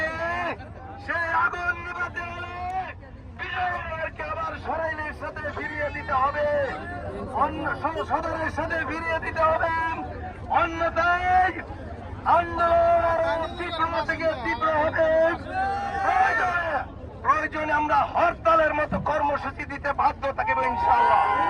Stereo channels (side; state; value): both; identical; correlation 1.00